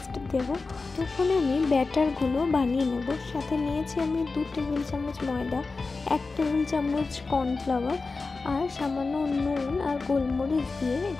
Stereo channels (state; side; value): quieter; right; 4.0 dB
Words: দেব। তখন আমি ব্যাটারগুলো বানিয়ে নেব। সাথে নিয়েছি আমি 2 টেবিল চামচ ময়দা, 1 টেবিল চামচ কর্নফ্লাওয়ার আর সামান্য নুন আর গোলমরিচ দিয়ে